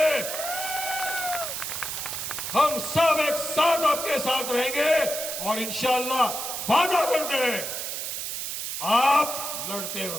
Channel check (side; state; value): right; noise; hiss, 4 dB below the sound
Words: हम सब एक साथ आपके साथ रहेंगे और इंशाअल्लाह वादा करते हैं, आप लड़ते